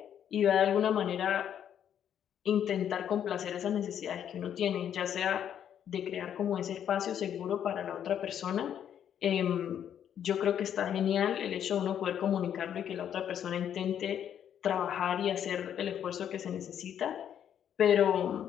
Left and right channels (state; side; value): quieter; right; 9.4 dB